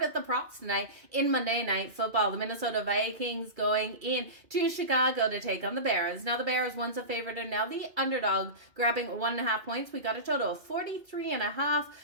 at the props tonight in Monday Night Football. The Minnesota Vikings going in to Chicago to take on the Bears. Now, the Bears once a favorite and now the underdog, grabbing 1.5 points. We got a total of 43.5.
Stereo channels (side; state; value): left; late; 2.3 ms